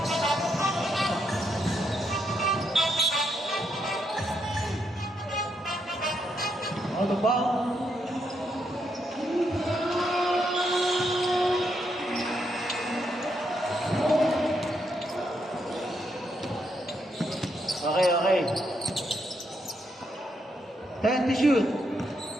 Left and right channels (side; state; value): both; normal; correlation 0.78